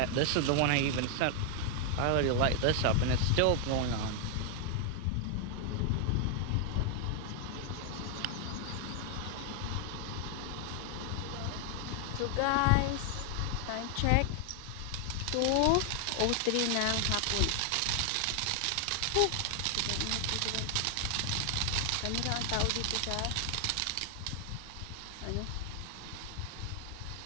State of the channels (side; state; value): both; different; correlation 0.00